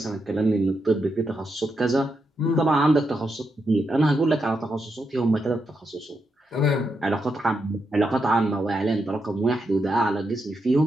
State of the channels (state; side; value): normal; both; correlation 0.83